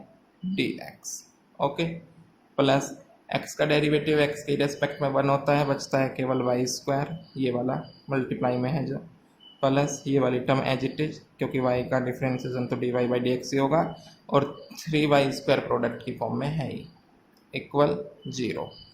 d x, okay, plus x का डेरिवेटिव x के रेस्पेक्ट में 1 होता है, बचता है केवल वाई स्क्वायर, ये वाला मल्टीप्लाई में है जो, प्लस ये वाली टर्म एज इट इज, क्योंकि y का डिफरेंशिएशन तो dy बाई डी एक्स ही होगा, और 3y स्क्वायर प्रोडक्ट की फॉर्म में है ही, इक्वल 0।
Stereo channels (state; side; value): identical; both; correlation 1.00